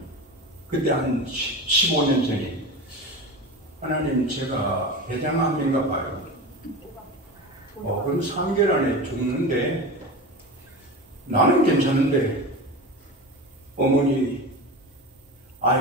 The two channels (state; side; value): normal; both; correlation 0.27